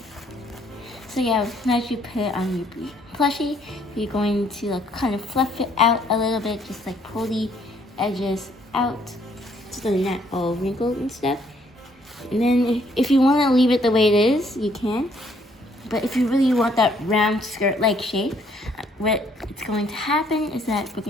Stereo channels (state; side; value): normal; both; correlation 0.66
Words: So yeah, once you put it on your plushie, you're going to kind of fluff it out a little bit, just like pull the edges out so they're not all wrinkled and stuff. And then if you want to leave it the way it is, you can. But if you really want that round skirt-like shape, what it's going to happen is that we're